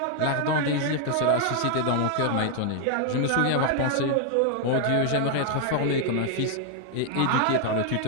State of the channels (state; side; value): different; both; correlation 0.00